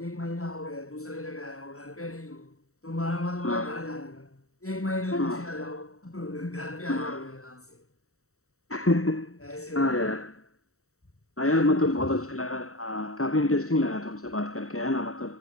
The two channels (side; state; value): right; late; 0.64 ms